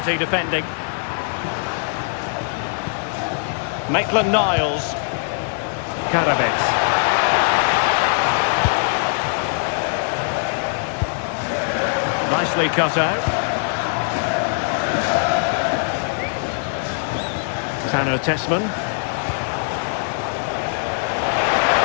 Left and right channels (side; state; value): right; silent; digital silence